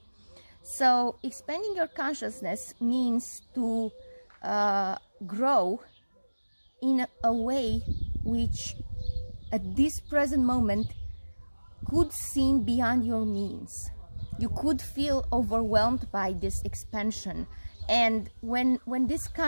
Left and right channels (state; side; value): inverted; both; correlation -1.00